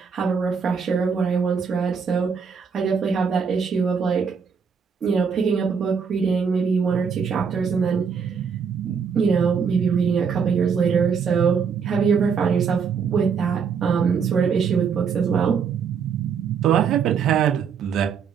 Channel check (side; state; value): left; quieter; 6.4 dB